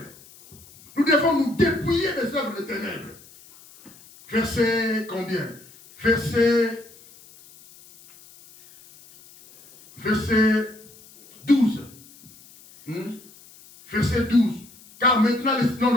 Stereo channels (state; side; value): noise; left; hiss, 24 dB below the sound